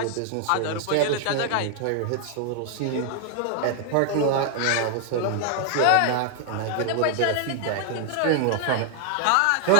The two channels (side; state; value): both; different; correlation 0.00